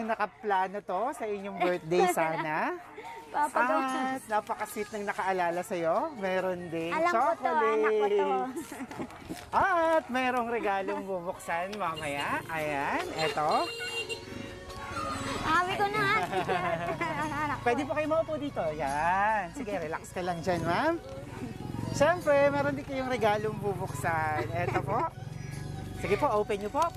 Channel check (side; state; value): both; identical; correlation 1.00